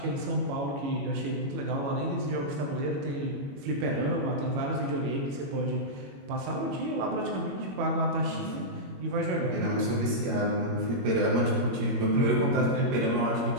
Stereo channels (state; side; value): late; left; 21 ms